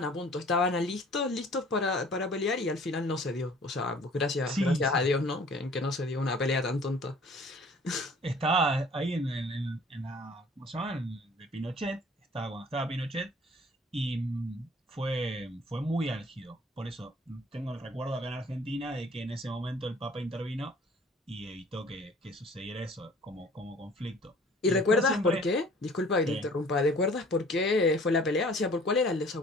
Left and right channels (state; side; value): normal; both; correlation 0.51